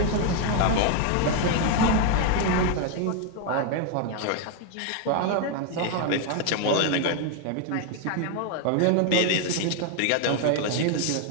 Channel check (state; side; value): different; both; correlation 0.01